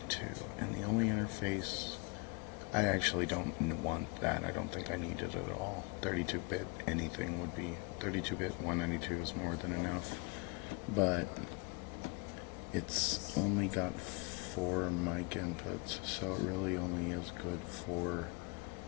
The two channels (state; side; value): quieter; right; 29.0 dB